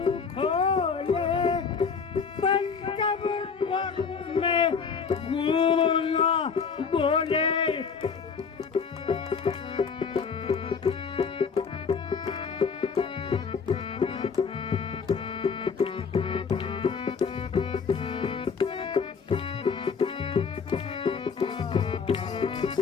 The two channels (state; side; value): quieter; right; 5.8 dB